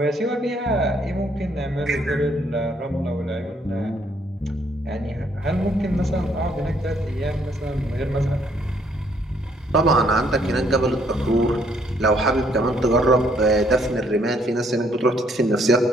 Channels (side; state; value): both; normal; correlation 0.68